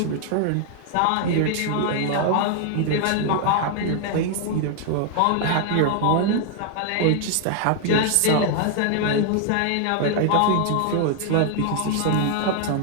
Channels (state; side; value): different; both; correlation 0.00